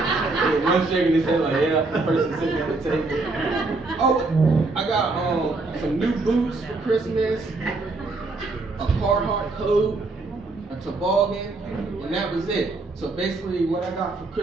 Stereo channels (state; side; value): quieter; left; 3.4 dB